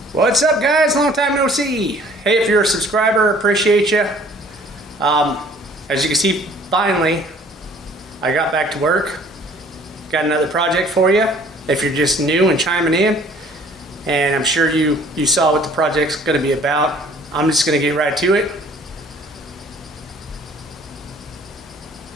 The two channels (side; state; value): both; normal; correlation 0.54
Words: What's up, guys? Long time no see. Hey, if you're a subscriber, appreciate you. As you can see, finally, I got back to work. Got another project for you. If you're just new and chiming in, and I'm sure you saw what the project's going to be about, I'm just going to get right to it.